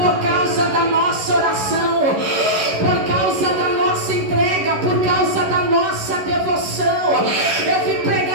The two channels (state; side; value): late; left; 11 ms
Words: causa da nossa oração, por causa da nossa entrega, por causa da nossa devoção. Eu vim